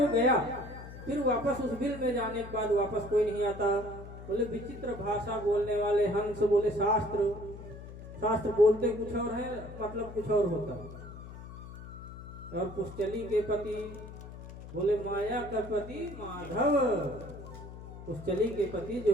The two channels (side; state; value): left; noise; hum, 13 dB below the sound